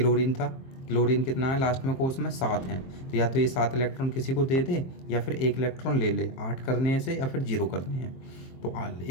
था, क्लोरीन कितना है लास्ट में कोर्स में, 7 है, तो या तो ये 7 इलेक्ट्रॉन किसी को दे दे या फिर 1 इलेक्ट्रॉन ले ले, 8 करने से या फिर 0 करने हैं। तो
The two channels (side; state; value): right; late; 23 ms